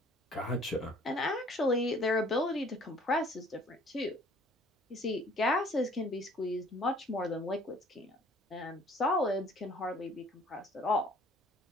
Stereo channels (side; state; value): both; normal; correlation 0.55